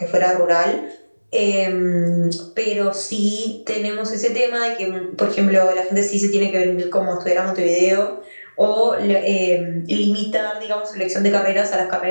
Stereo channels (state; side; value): inverted; both; correlation -1.00